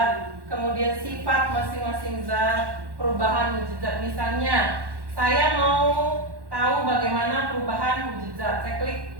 kemudian sifat masing-masing zat, perubahan wujud zat. Misalnya saya mau tahu bagaimana perubahan wujud zat, saya klik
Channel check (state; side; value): late; left; 1.1 ms